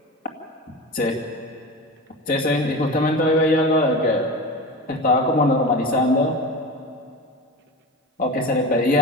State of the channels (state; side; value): normal; both; correlation 0.29